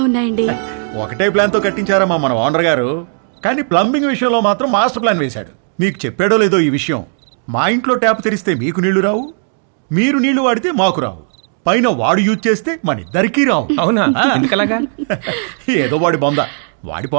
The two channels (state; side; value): silent; left; 68 dB below the other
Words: ఉన్నాయండి. ఒకటే ప్లాన్ తో కట్టించారమ్మా మన ఓనర్ గారు, కానీ ప్లంబింగ్ విషయంలో మాత్రం మాస్టర్ ప్లాన్ వేశాడు. మీకు చెప్పాడో లేదో ఈ విషయం, మా ఇంట్లో ట్యాప్ తెరిస్తే మీకు నీళ్లు రావు, మీరు నీళ్లు వాడితే మాకు రావు, పైన వాడు యూజ్ చేస్తే మన ఇద్దరికీ రావు. అవునా? ఎందుకలాగా? ఏదో వాడి బొంద, వాడి